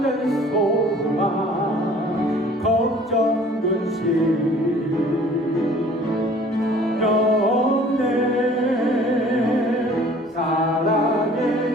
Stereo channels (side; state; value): both; normal; correlation 0.51